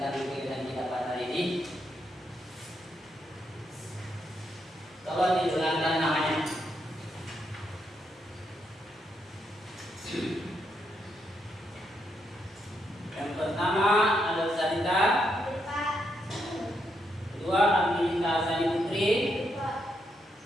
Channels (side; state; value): both; normal; correlation 0.79